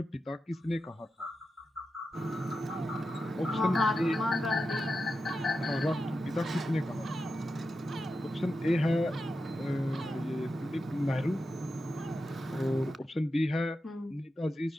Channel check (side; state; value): both; normal; correlation 0.90